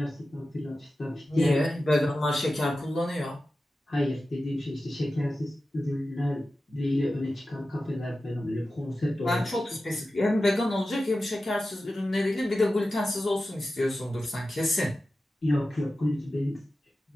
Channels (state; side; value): normal; both; correlation 0.94